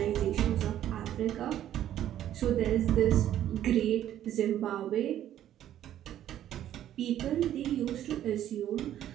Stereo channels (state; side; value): quieter; left; 11.6 dB